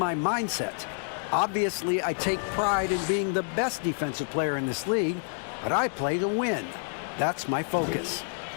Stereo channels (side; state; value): right; silent; digital silence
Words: mindset. Obviously, I take pride in being the best defensive player in this league, but I play to win. That's my focus.